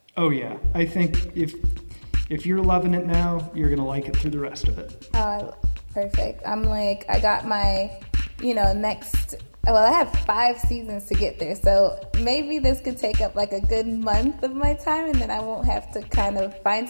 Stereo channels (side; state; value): both; inverted; correlation -1.00